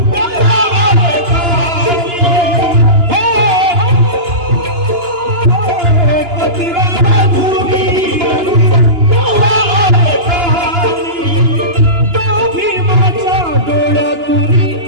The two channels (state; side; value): late; left; 2.9 ms